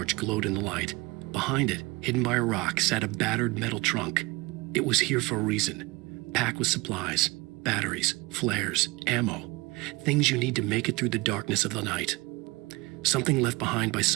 glowed in the light. Behind it, hidden by a rock, sat a battered metal trunk. It was here for a reason, packed with supplies, batteries, flares, ammo, things you need to make it through the darkness of the night. Something left behind by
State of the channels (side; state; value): left; quieter; 24.0 dB